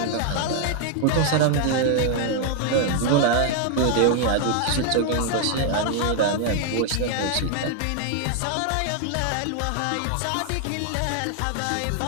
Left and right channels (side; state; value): both; different; correlation 0.00